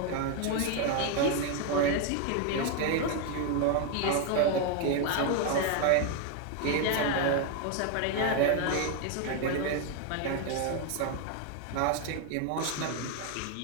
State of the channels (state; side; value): different; both; correlation 0.01